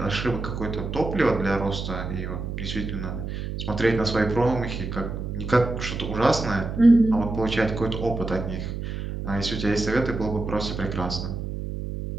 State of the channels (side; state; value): right; noise; hum, 5 dB below the sound